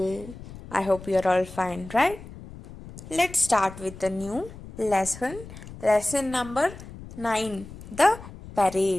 I hope you are all fine, right? Let's start with a new lesson. Lesson number 9, the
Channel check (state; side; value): noise; left; rumble, 15 dB below the sound